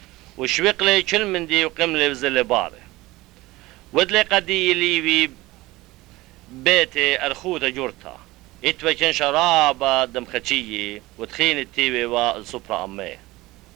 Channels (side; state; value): left; quieter; 19.5 dB